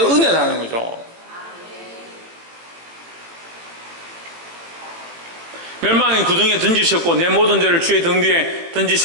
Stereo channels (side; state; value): left; late; 18 ms